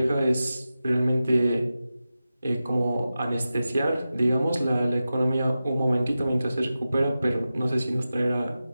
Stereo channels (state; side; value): inverted; both; correlation -0.93